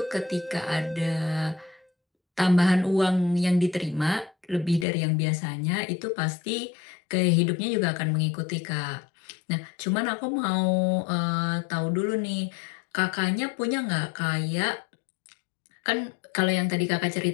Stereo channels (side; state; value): right; drops out; at 4.9 s